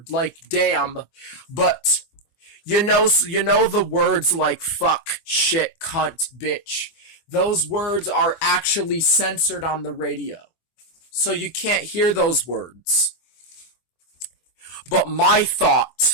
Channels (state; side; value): late; right; 24 ms